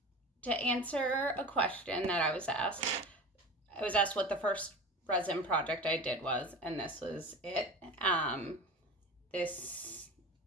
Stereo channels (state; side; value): normal; both; correlation 0.33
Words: To answer a question that I was asked what the first resin project I did was, and this was it. This